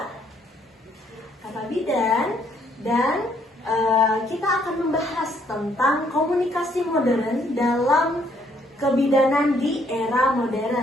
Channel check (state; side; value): normal; both; correlation 0.68